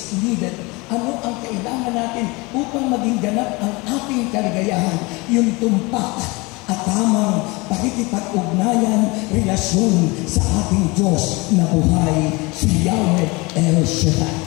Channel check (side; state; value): right; quieter; 25.3 dB